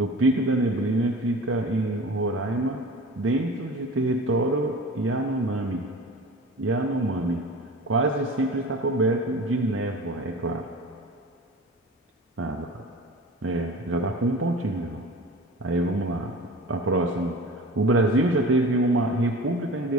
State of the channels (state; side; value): normal; both; correlation 0.38